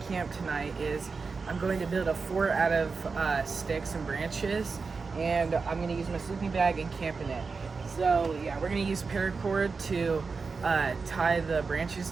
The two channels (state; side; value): quieter; left; 4.7 dB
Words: camp tonight is I'm going to build a fort out of sticks and branches, and I'm going to use my sleeping bag and camp in it. So yeah, we're going to use paracord to tie the branches